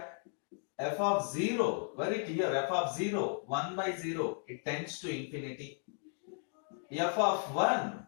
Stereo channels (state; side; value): silent; right; 54 dB below the other